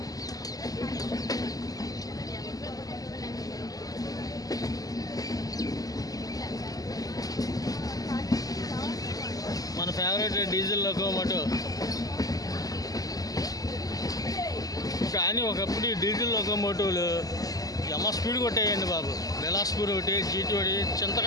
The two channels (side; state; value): right; late; 0.17 ms